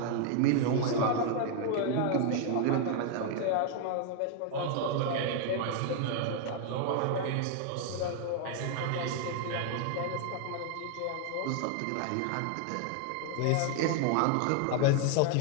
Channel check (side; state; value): both; different; correlation 0.00